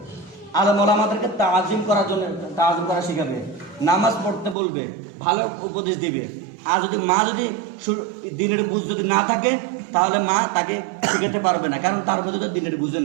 আলেম ওলামাদেরকে তাজিম করার জন্য তাজিম করা শিখাবে, নামাজ পড়তে বলবে, ভালো উপদেশ দিবে। আর যদি মা যদি দিনের বুঝ যদি না থাকে, তাহলে মা তাকে শিখাতে পারবে না, কারণ তার মধ্যে তো দিনের বুঝে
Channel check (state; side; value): drops out; left; at 4.5 s